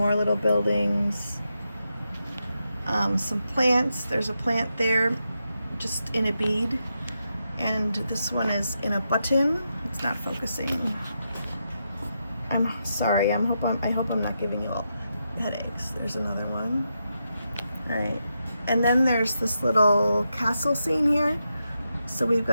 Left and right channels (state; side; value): inverted; both; correlation -0.85